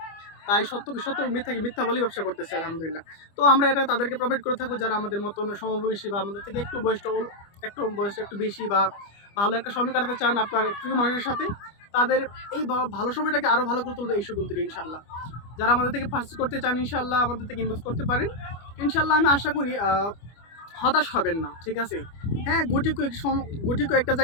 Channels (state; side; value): late; right; 25 ms